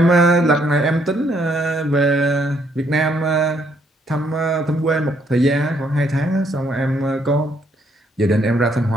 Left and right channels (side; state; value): both; normal; correlation 0.70